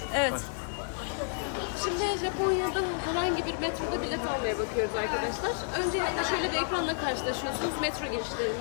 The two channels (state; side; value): silent; right; digital silence